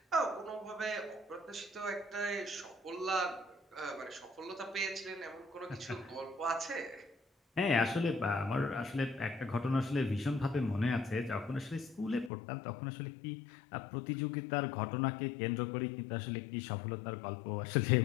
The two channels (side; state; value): right; drops out; at 12.3 s